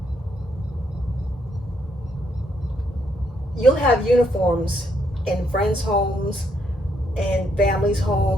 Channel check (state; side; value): normal; both; correlation 0.74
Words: you'll have uniforms in friends' homes and families'